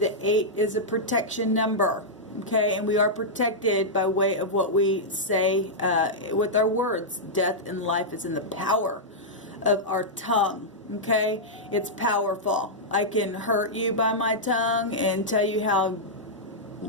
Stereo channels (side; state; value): both; normal; correlation -0.08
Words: 8 is a protection number. Okay, and we are protected by way of what we say with our words. Death and life is in the power of our tongue. Okay, it's powerful. I can hurt you by my tongue and tell you how